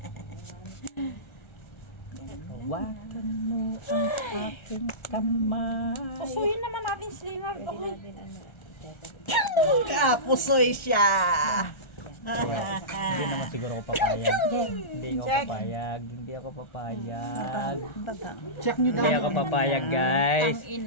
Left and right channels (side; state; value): right; late; 1.3 ms